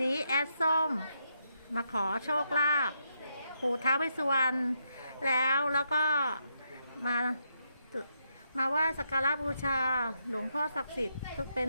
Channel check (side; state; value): both; inverted; correlation -0.80